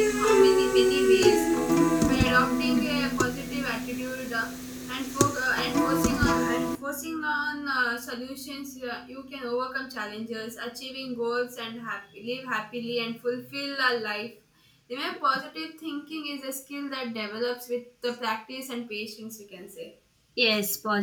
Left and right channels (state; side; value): identical; both; correlation 1.00